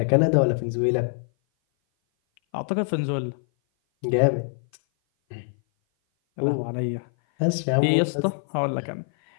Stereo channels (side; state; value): right; silent; 57 dB below the other